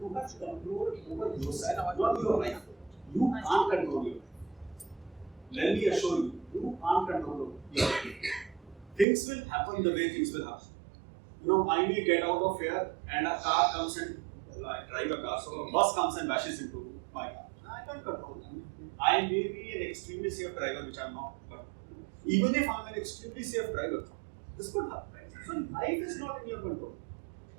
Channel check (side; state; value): left; drops out; at 9.1 s